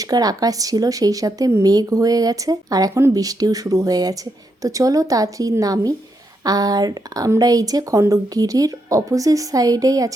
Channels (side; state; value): both; normal; correlation 0.81